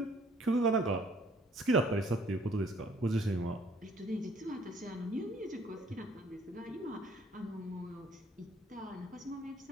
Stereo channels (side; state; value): both; normal; correlation 0.59